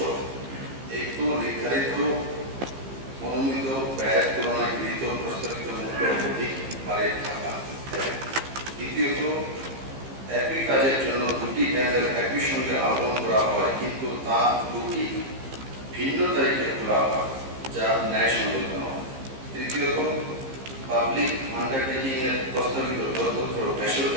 একটু নির্ধারিত মনোনীত ব্যয়ের তুলনায় গৃহীত প্রস্তাবিত মূল্য অধিক হারে থাকা। দ্বিতীয়ত একই কাজের জন্য দুটি টেন্ডার একই সঙ্গে আহ্বান করা হয় কিন্তু তা দুটি ভিন্ন তারিখে খোলা হয় যা ন্যায়সঙ্গত নয়। তৃতীয়ত পাবলিক আন্ডারটেকিং এর প্রস্তাবিত দরপত্র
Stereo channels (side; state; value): left; late; 15 ms